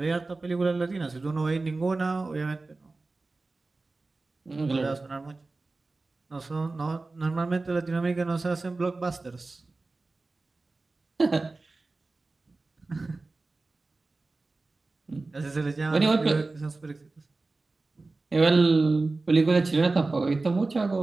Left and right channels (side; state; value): left; quieter; 3.4 dB